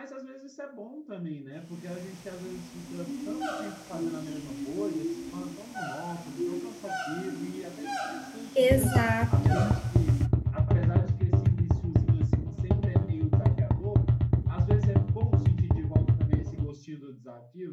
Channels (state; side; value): identical; both; correlation 1.00